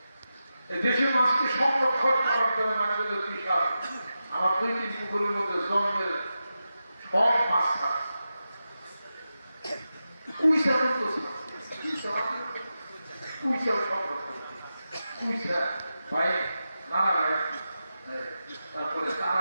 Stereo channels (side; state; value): both; inverted; correlation -0.91